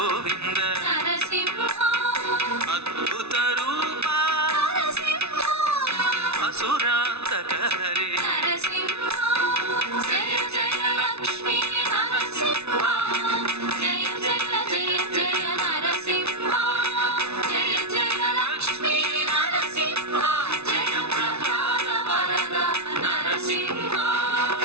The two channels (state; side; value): late; left; 0.80 ms